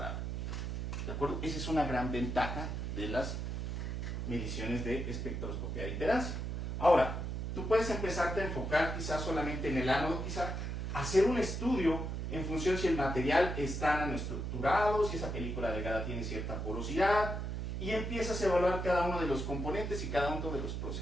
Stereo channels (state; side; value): noise; right; hum, 3 dB below the sound